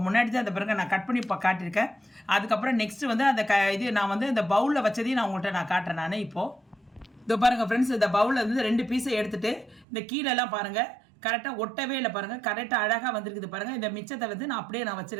முன்னாடி தான் அந்த பிறகு நான் கட் பண்ணி காட்டியிருக்கேன். அதுக்கப்புறம் நெக்ஸ்ட்டு வந்து அந்த இது நான் வந்து இந்த பவுலில் வச்சதையும் நான் உங்கள்கிட்ட நான் காட்டுறேன். நான் இப்போது இதோ பாருங்கள் ஃப்ரெண்ட்ஸ், இந்த பவுலில் வந்து 2 பீஸை எடுத்துகிட்டு இந்த கீழெல்லாம் பாருங்கள் கரெக்டாக ஒட்டவே இல்லை பாருங்கள், கரெக்டாக அழகாக வந்துருக்குது பாருங்கள். இந்த மிச்சத்தை வந்து நான் அப்படியே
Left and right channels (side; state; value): left; drops out; at 9.9 s